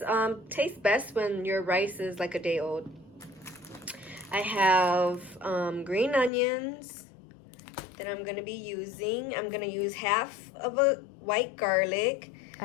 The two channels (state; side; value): drops out; right; at 6.3 s